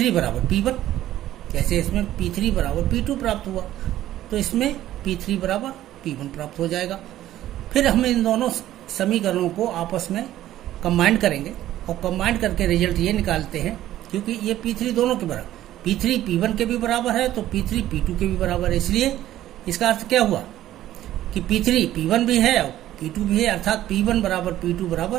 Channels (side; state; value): left; quieter; 13.4 dB